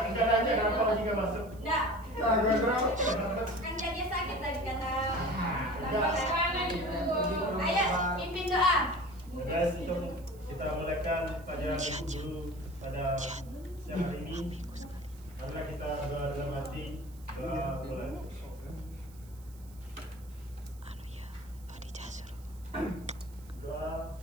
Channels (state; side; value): noise; right; hiss, 25 dB below the sound